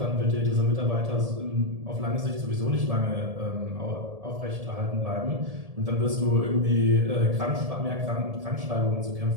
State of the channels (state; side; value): late; left; 1.7 ms